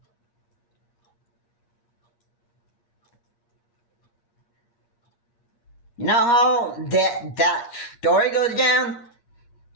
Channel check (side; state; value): right; late; 8.5 ms